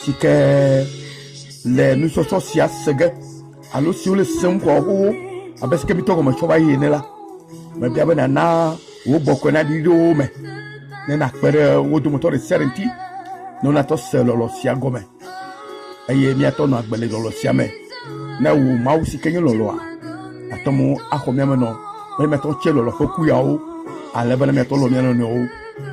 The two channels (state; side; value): identical; both; correlation 1.00